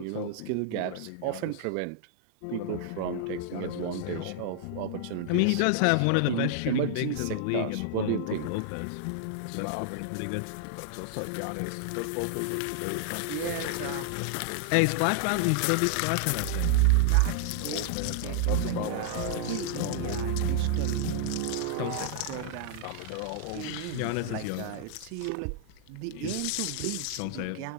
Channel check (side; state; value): both; different; correlation -0.01